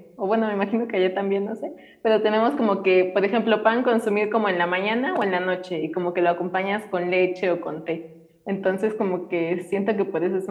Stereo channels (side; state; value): both; identical; correlation 1.00